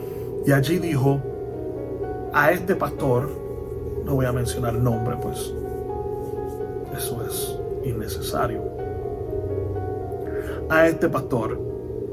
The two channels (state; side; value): identical; both; correlation 1.00